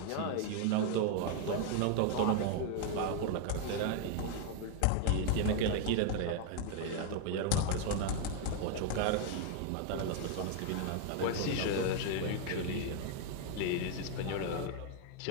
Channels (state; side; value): different; both; correlation 0.00